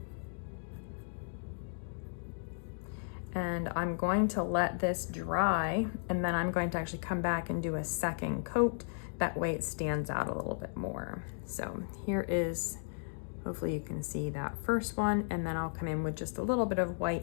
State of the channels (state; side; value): silent; right; digital silence